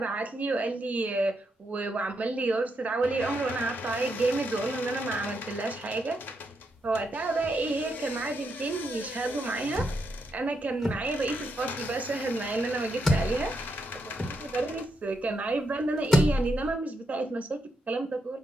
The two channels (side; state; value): both; normal; correlation 0.81